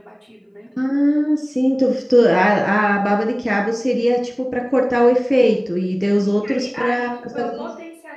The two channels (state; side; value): identical; both; correlation 1.00